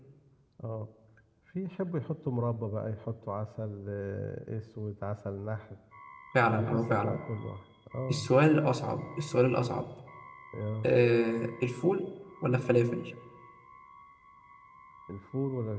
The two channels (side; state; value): both; identical; correlation 1.00